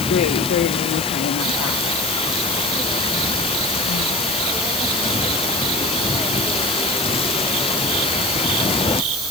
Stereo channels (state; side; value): noise; left; hiss, 6 dB below the sound